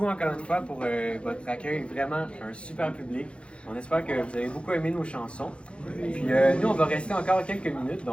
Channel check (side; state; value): right; late; 0.059 ms